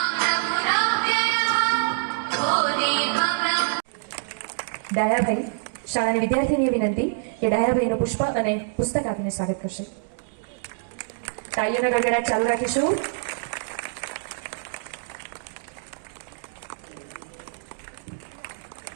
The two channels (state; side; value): silent; left; digital silence